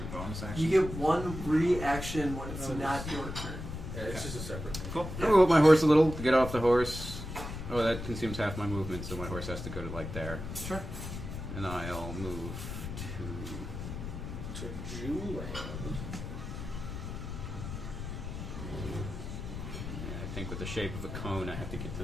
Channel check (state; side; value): noise; left; rumble, 7 dB below the sound